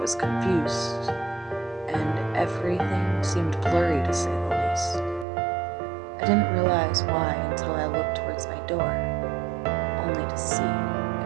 confused, and everything seemed blurry to say the least. I didn't realize why until I looked towards my door, only to see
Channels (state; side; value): drops out; left; at 5.2 s